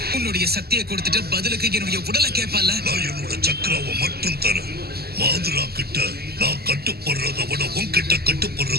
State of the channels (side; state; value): left; late; 0.46 ms